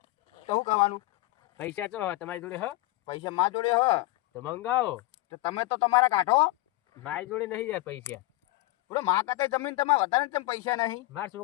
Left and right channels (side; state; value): right; quieter; 19.8 dB